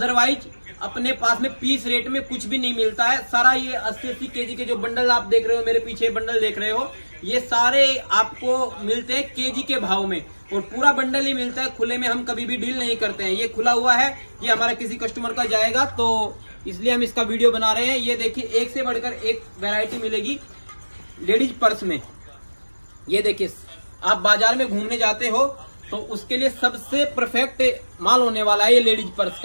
अपने पास में पीस रेट में कुछ भी नहीं मिलता है। सारा ये 80-80 केजी के जो बंडल आप देख रहे हो, मेरे पीछे बंडल देख रहे हो, ये सारे आपको मिलते हैं केजी के भाव में और पूरा बंडल ही मिलता है। खुले में हम कभी भी डील नहीं करते हैं। ये खुला हुआ है, ये हमारा किसी कस्टमर का जाएगा तो इसलिए हम इसका वीडियो बना रहे हैं। ये देखिए एक से बढ़कर एक वैरायटी मिलेगी लेडीज पर्स में। ये देखिए आप बाजार में घूमने जाते हो तो उसके लिए सबसे परफेक्ट माल होने वाला है ये लेडीज पर्स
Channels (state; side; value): inverted; both; correlation -1.00